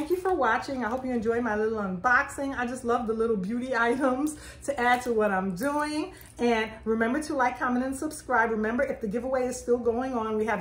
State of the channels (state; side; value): identical; both; correlation 1.00